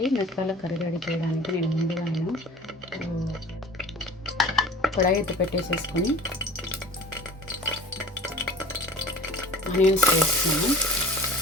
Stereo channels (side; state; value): both; normal; correlation 0.41